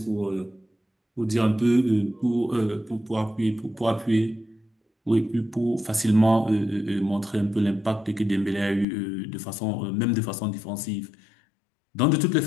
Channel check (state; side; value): drops out; right; at 8.8 s